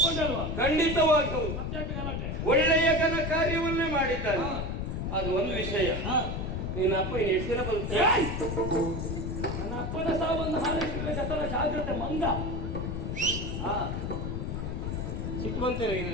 ಖಂಡಿತವಾಗಿ ಹೌದು. ಮತ್ತೆ ಒಳ್ಳೆಯ ಘನ ಕಾರ್ಯವನ್ನೇ ಮಾಡಿದ್ದಾನೆ. ಅದು ಒಂದು ವಿಷಯ. ನಿನ್ನ ಅಪ್ಪ ಇನ್ನು ಎಷ್ಟು ದಿನ ಬರುತ್ತೆ? ನನ್ನ ಅಪ್ಪನ ಸಾವನ್ನು ಹಾರೈಸಿದ ಜತನ ಜಾಗ್ರತೆ ಮಂಗ. ಸಿಟ್ಟು ಬಂತೇನೆ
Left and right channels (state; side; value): noise; left; rumble, 3 dB below the sound